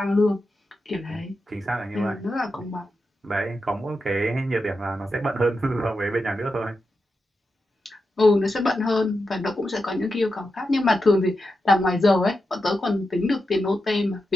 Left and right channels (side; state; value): both; normal; correlation 0.88